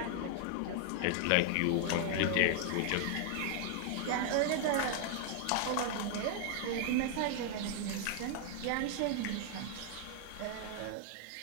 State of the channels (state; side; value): different; both; correlation 0.00